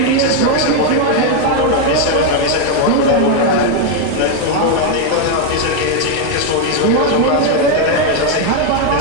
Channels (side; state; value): both; different; correlation 0.01